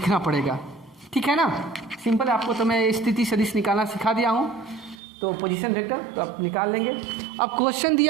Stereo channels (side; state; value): left; drops out; at 5.0 s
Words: पड़ेगा, ठीक है ना। सिंपल, आपको तो मैं स्थिति सदिश निकालना सिखा दिया हूँ, तो पोजीशन वेक्टर तो आप निकाल लेंगे। अब क्वेश्चन